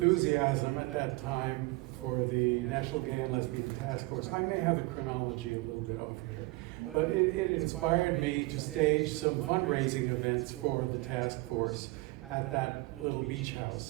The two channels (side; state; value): left; quieter; 22.7 dB